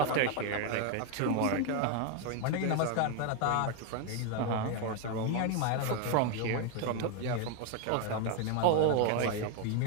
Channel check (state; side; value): different; both; correlation 0.01